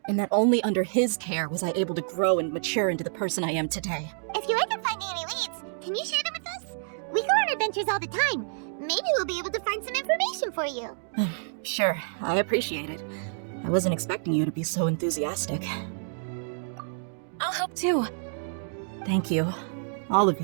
And that only under his care was I able to grow and mature into the person I am today. If you're ever finding any leads, can you share them with us? We go on adventures all the time. Maybe we'll be able to find some information for you. Sure, I appreciate it. I wasn't expecting you to be so enthusiastic. I'll help too. Thank you. All of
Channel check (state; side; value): silent; left; digital silence